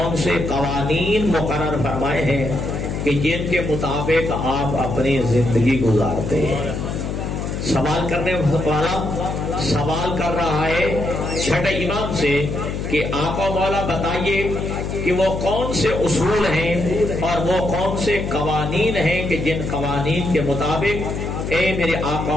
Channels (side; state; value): left; noise; hum, 4 dB below the sound